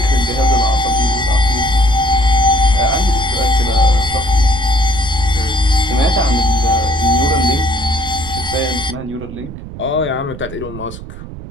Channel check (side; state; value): right; noise; rumble, 12 dB below the sound